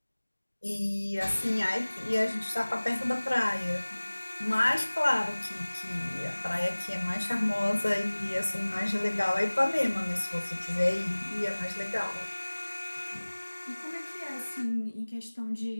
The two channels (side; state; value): both; inverted; correlation -1.00